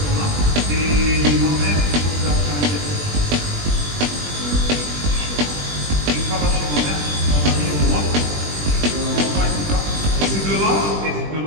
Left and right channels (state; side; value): late; left; 20 ms